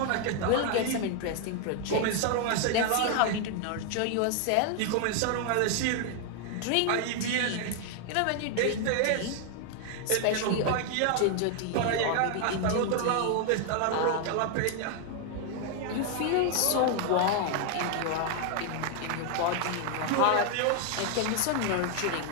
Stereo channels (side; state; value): both; different; correlation 0.00